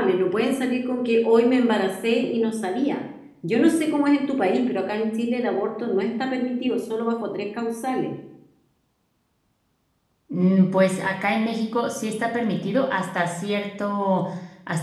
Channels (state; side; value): identical; both; correlation 1.00